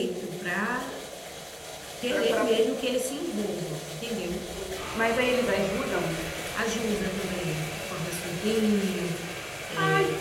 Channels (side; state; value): both; identical; correlation 1.00